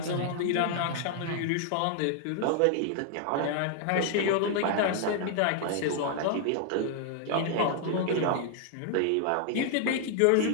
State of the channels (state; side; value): different; both; correlation 0.00